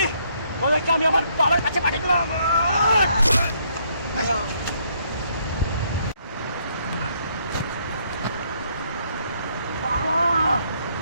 তোদেরকে আমি আমার বাবার কাছে পাঠিয়ে দিলাম।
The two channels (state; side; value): inverted; both; correlation -0.70